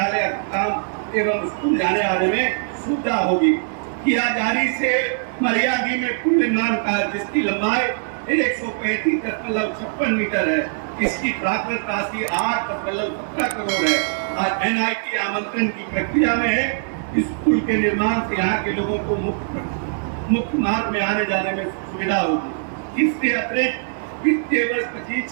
अस्पताल एवं स्कूल जाने आने में सुविधा होगी। किया जारी से मरियाडी में पुल निर्माण कार्य जिसकी लंबाई 135.56 मीटर है, इसकी प्राकृतिक राशि 8.17 करोड़ है और NIT आमंत्रण की प्रक्रिया में है। इस पुल के निर्माण से यहाँ के लोगों को मुख्य मार्ग में आने जाने में सुविधा होगी। इससे अतिरिक्त वित्तीय वर्ष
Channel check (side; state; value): left; silent; digital silence